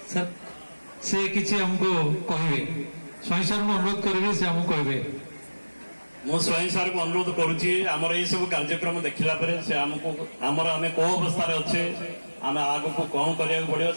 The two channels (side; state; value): both; inverted; correlation -1.00